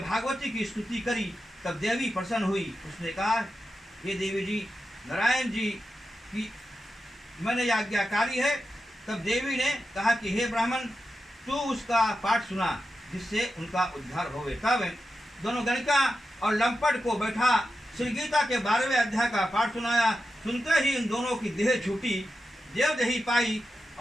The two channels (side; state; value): both; normal; correlation 0.90